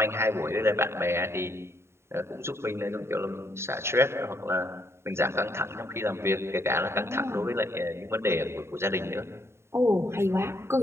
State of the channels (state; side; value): late; left; 0.13 ms